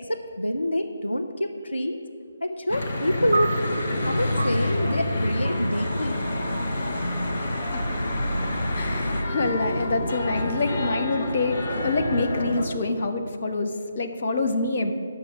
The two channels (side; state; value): both; inverted; correlation -0.85